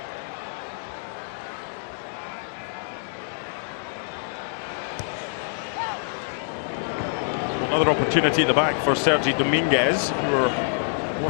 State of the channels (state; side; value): silent; right; digital silence